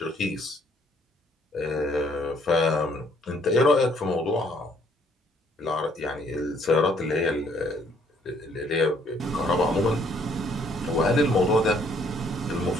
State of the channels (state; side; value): normal; both; correlation 0.65